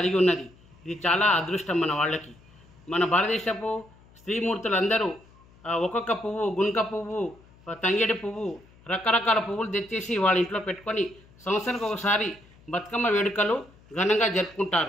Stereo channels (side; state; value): left; noise; hum, 27 dB below the sound